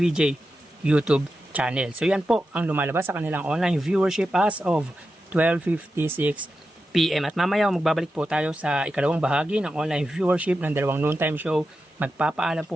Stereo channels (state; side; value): normal; both; correlation 0.90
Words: YouTube channel. So yan po ang lumalabas sa kanilang online viewership as of 12:56 PM. At mamaya magbabalik po tayo sa ikalawang bahagi ng online viewership ng dalawang noontime show. Magpapaalam